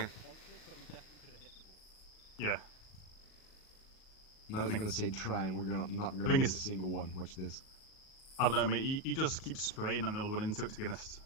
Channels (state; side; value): late; right; 38 ms